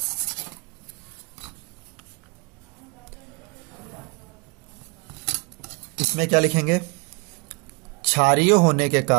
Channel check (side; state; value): left; quieter; 30.7 dB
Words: इसमें क्या लिखेंगे? क्षारीय होने के